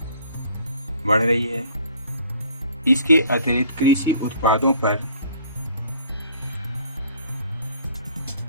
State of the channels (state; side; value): inverted; both; correlation -0.55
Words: बढ़ रही है। इसके अतिरिक्त कृषि उत्पादों पर